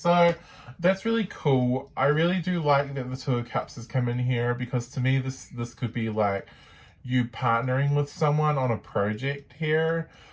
that's really cool. I really do like that the Two of Cups has come in here, because to me this could be like you partnering with someone on a project here.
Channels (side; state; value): both; identical; correlation 1.00